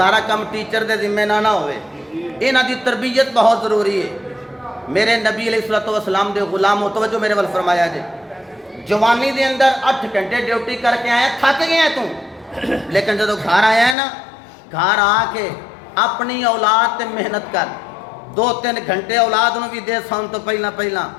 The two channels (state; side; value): drops out; right; at 14.0 s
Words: ਕੰਮ ਟੀਚਰ ਦੇ ਜ਼ਿੰਮੇ ਨਾਲ ਨਾ ਹੋਵੇ, ਇਹਨਾਂ ਦੀ ਤਰਬੀਅਤ ਬਹੁਤ ਜ਼ਰੂਰੀ ਹੈ। ਮੇਰੇ ਨਬੀ अलैहिस्सलातु वस्सलाम ਦੇ ਗੁਲਾਮ ਤਵੱਜੋ ਮੇਰੇ ਵੱਲ ਫਰਮਾਇਆ ਜੇ, जवानी के अंदर 8 घंटे ड्यूटी करके आया, थक गया तू, लेकिन जो घर आया है ना, घर आके अपनी औलाद ते मेहनत कर, 2-3 घंटे औलाद नूं भी दे सन तो पहला